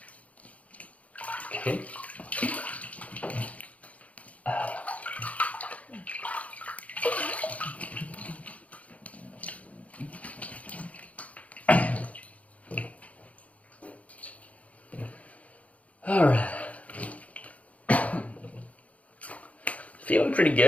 Okay. Alright. Feeling pretty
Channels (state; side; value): late; right; 0.067 ms